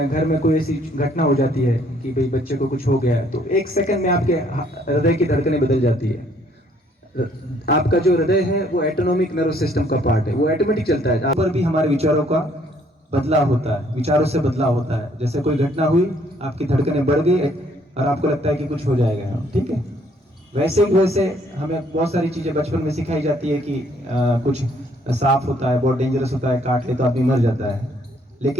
घर में कोई ऐसी घटना हो जाती है कि भाई बच्चे को कुछ हो गया है, तो 1 सेकंड में आपके हृदय की धड़कनें बदल जाती है। आपका जो हृदय है वो ऑटोनॉमिक नर्व सिस्टम का पार्ट है, वो ऑटोमेटिक चलता है। पर भी हमारे विचारों का बदलाव होता है, विचारों से बदलाव होता है। जैसे कोई घटना हुई, आपकी धड़कनें बढ़ गई और आपको लगता है कि कुछ हो जाएगा, ठीक है, वैसे हमें बहुत सारी चीज़ें बचपन में सिखाई जाती है कि कुछ सांप होता है, बहुत डेंजरस होता है, काट ले तो आदमी मर जाता है।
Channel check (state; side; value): normal; both; correlation 0.64